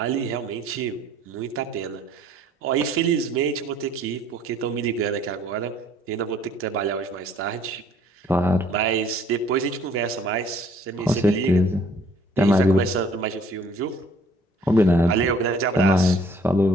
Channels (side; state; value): both; normal; correlation 0.58